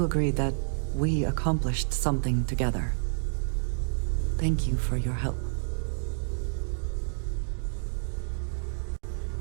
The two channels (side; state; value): left; silent; digital silence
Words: agree that we accomplished something together. Thank you for your help.